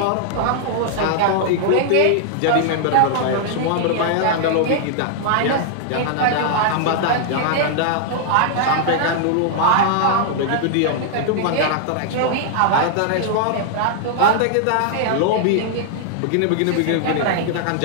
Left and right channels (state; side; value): different; both; correlation -0.01